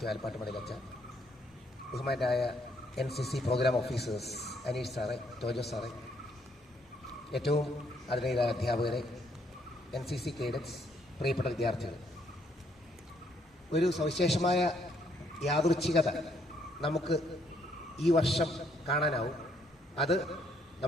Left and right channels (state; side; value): normal; both; correlation 0.70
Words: ആലപ്പാട്ടുമടയിലച്ച, ബഹുമാനായ NCC പ്രോഗ്രാം ഓഫീസേഴ്സ് അനീഷ് സാറെ, ടോജോ സാറെ, ഏറ്റവും ആദരണീയരായ അധ്യാപകരെ, NCC കേഡറ്റ്സ്, പ്രിയപ്പെട്ട വിദ്യാർത്ഥികൾ, ഒരു സവിശേഷമായ യാദൃച്ഛികത നമുക്ക് ഈ വർഷം കാണാനാവും. അത്